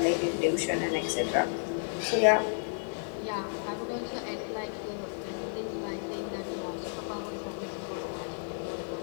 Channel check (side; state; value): right; silent; digital silence